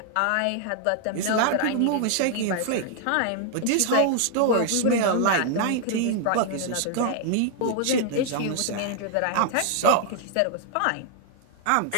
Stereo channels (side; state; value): both; different; correlation 0.00